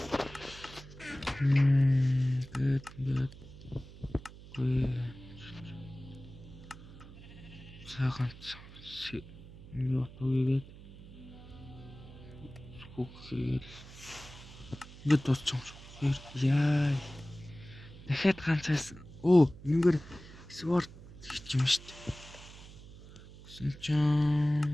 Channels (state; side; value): noise; right; hum, 17 dB below the sound